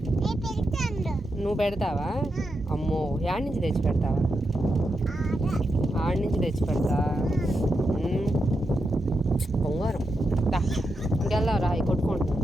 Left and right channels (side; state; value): both; normal; correlation 0.86